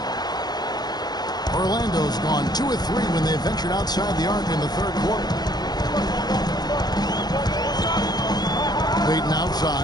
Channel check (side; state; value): right; late; 0.19 ms